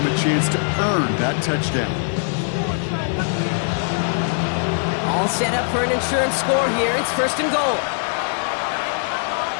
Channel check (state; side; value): silent; right; 61 dB below the other